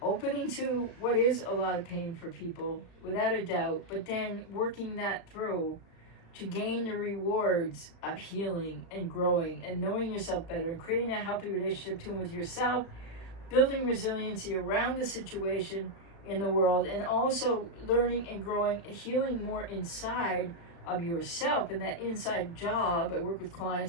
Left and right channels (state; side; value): late; right; 36 ms